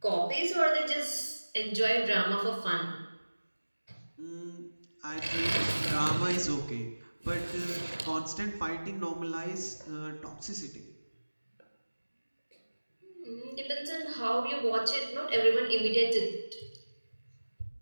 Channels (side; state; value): both; inverted; correlation -1.00